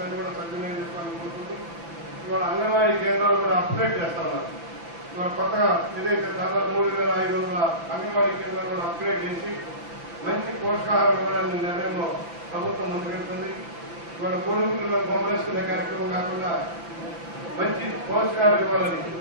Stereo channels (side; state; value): left; late; 5.9 ms